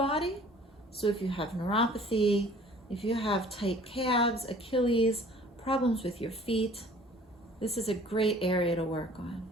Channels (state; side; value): normal; both; correlation 0.50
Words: So if you have neuropathy, if you have tight calves, Achilles, problems with your feet, this is a great area to work on.